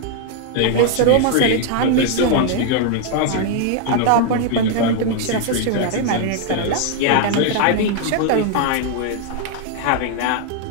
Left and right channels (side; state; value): both; different; correlation 0.00